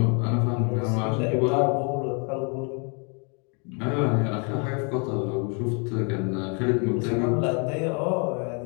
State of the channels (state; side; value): quieter; right; 36.9 dB